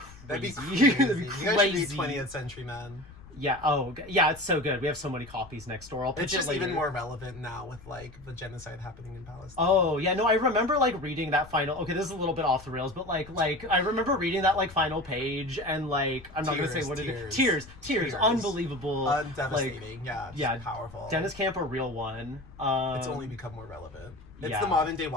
That'd be crazy. That'd be You guys should read 20th Century Men. Yeah. Oh, yeah. It's so good. We have so many copies next door. I'll pitch It's it just later. even more relevant now with like the genocide happening in Palestine. Oh yeah, no, I remember like reading that final. Okay, this is a little bit off the rails, but like I remember reading that like final page and like I'm not gonna say what it is. Tears, unbelievable, devastating. Like, yeah, powerful. Dennis Camp, a real one. It's only become more relevant. It's yeah. the modern day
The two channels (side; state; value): left; noise; rumble, 20 dB below the sound